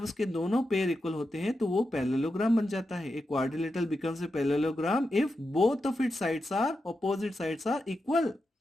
उसके दोनों पेयर इक्वल होते हैं तो वो पैरेललोग्राम बन जाता है। एक quadrilateral becomes a parallelogram if both of its sides are, opposite sides are equal.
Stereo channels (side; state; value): both; normal; correlation 0.88